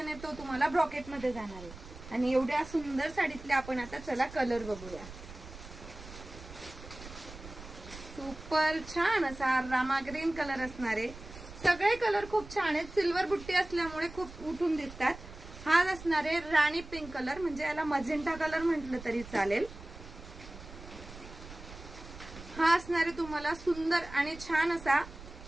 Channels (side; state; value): right; noise; rumble, 15 dB below the sound